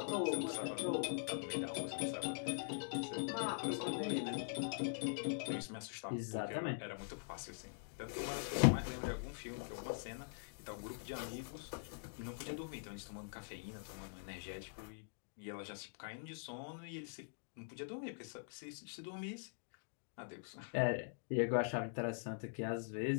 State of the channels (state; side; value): silent; right; digital silence